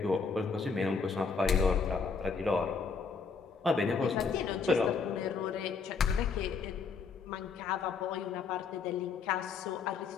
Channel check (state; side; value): quieter; right; 5.2 dB